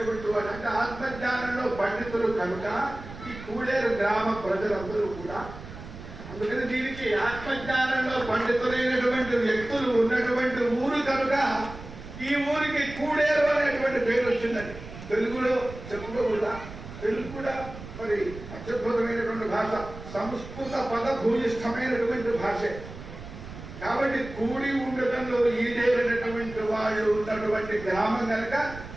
వాడు అంటే ఆత్మజ్ఞానంలో పండితులు కనుక ఈ కూడేరు గ్రామ ప్రజలందరూ కూడా. అందుకని దీనికి ఆత్మజ్ఞానంలో పండితులైనటువంటి వ్యక్తులు ఉన్నటువంటి ఊరు కనుక ఈ ఊరికి కూడేరు అనేటువంటి పేరు వచ్చిందండి. తెలుగులో చెప్పుకోకూడదా? తెలుగు కూడా మరి అత్యద్భుతమైనటువంటి భాష, సంస్కృత పద భూయిష్టమైనటువంటి భాషే. కాబట్టి కూడి ఉండటంలో ఈడేరినటువంటి వాళ్ళు ఉన్నటువంటి గ్రామం కనుక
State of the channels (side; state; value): right; noise; rumble, 13 dB below the sound